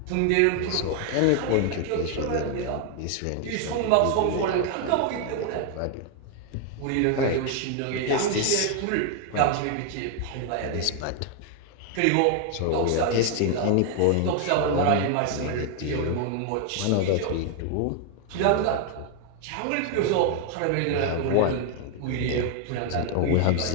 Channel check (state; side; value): different; both; correlation 0.01